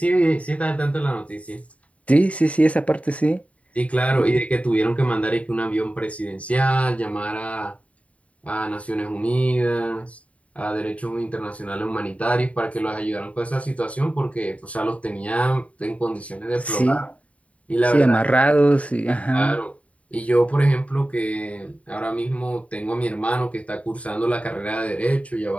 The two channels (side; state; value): right; late; 0.066 ms